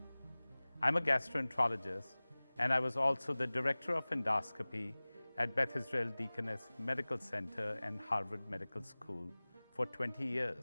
I'm a gastroenterologist, and I was also the Director of Endoscopy at Beth Israel Deaconess Medical Center and Harvard Medical School for 20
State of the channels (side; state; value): both; inverted; correlation -1.00